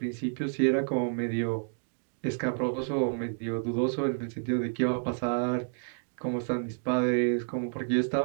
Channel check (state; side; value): silent; left; digital silence